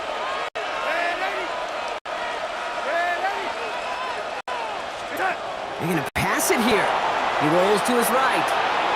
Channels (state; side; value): identical; both; correlation 1.00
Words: They're going to pass it here. He rolls to his right.